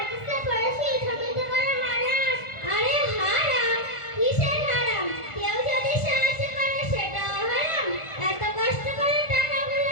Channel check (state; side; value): late; right; 1.4 ms